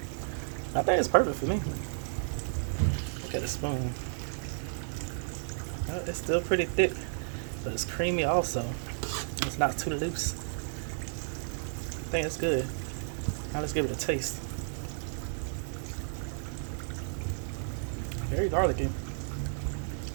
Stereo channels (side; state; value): left; silent; digital silence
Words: I think it's perfect for me. Look at the spoon. It's still pretty thick, but it's creamy also. It's not too loose. I think it's good. Now let's give it a taste. Very garlicky.